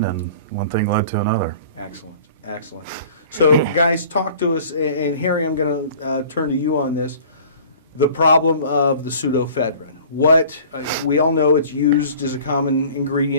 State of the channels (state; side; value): inverted; both; correlation -0.46